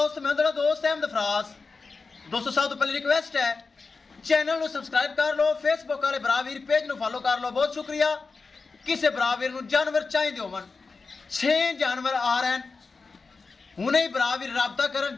मैं तेरा दोस्त अहमद फराज। दोस्तों सब तो पहले रिक्वेस्ट है चैनल ਨੂੰ ਸਬਸਕ੍ਰਾਈਬ ਕਰ ਲਓ, ਫੇਸਬੁੱਕ ਵਾਲੇ ਬਰਾਵੀਰ ਪੇਜ ਨੂੰ ਫਾਲੋ ਕਰ ਲਓ। ਬਹੁਤ ਸ਼ੁਕਰੀਆ। ਕਿਸੇ ਬਰਾਵੀਰ ਨੂੰ ਜਾਨਵਰ ਚਾਹੀਦੇ ਹੋਵਣ 6 ਜਾਨਵਰ ਆ ਰਹੇ ਹਨ, ਹੁਣੇ ਹੀ ਬਰਾਵੀਰ ਰਾਬਤਾ ਕਰਨ।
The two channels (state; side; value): quieter; right; 4.3 dB